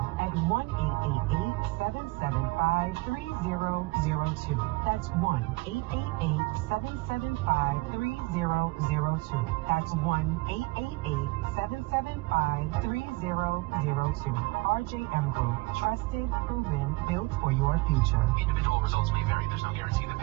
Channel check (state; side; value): quieter; left; 23.3 dB